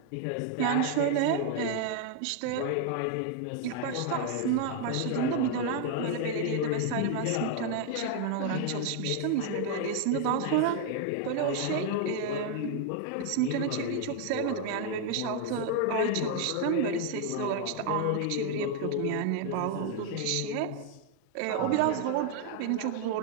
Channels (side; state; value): both; different; correlation 0.00